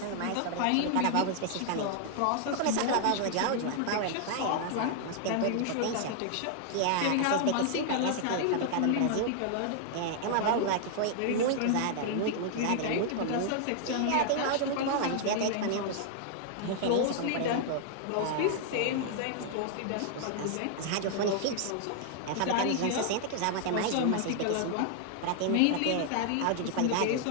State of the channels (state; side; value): different; both; correlation 0.00